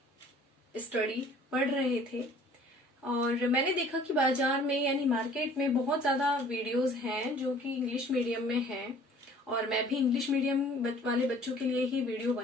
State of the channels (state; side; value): normal; both; correlation 0.52